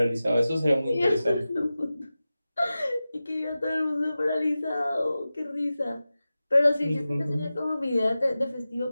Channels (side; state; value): both; inverted; correlation -0.95